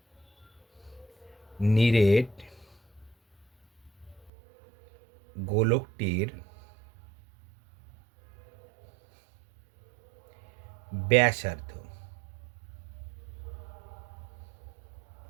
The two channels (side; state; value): left; drops out; at 4.3 s